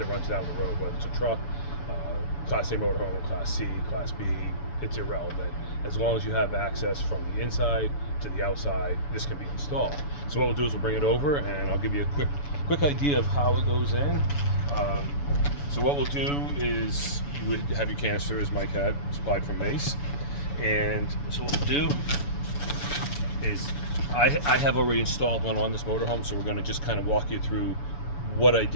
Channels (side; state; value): right; late; 7.0 ms